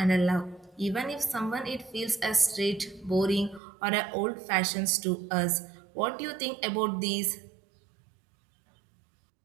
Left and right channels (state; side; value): drops out; left; at 3.6 s